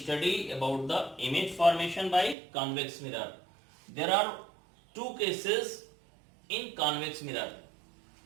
about the image formation by convex mirror. There are two cases in convex mirror.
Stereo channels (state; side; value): drops out; left; at 2.4 s